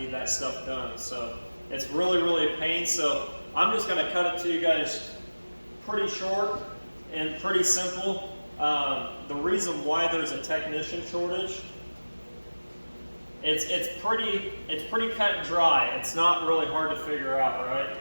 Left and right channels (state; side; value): inverted; both; correlation -1.00